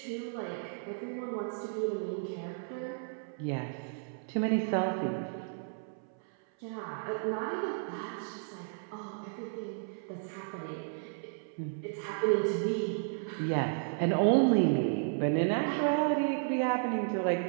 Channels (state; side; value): silent; left; 56 dB below the other